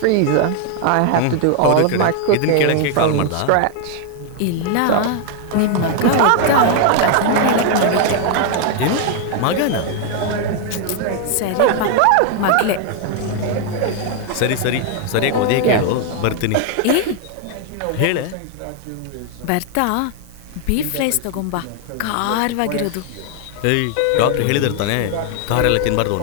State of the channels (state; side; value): different; both; correlation 0.00